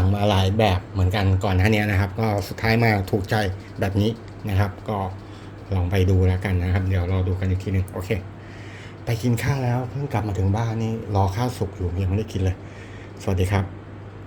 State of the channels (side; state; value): both; identical; correlation 1.00